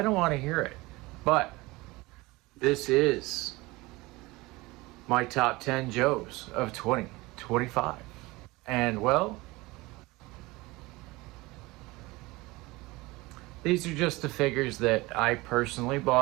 don't want to hear it. But this is my top 10 Joes of 2025. And well, these are just the figures that I personally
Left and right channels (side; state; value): left; quieter; 21.7 dB